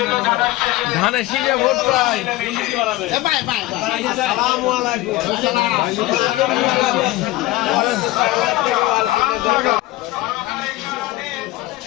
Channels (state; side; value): quieter; right; 17.8 dB